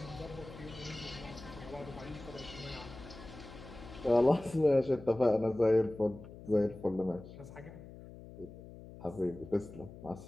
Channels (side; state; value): left; noise; hum, 15 dB below the sound